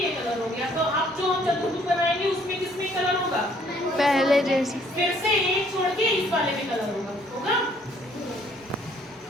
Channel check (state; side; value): normal; both; correlation 0.62